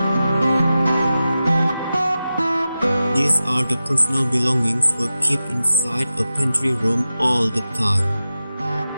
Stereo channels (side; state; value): both; inverted; correlation -0.93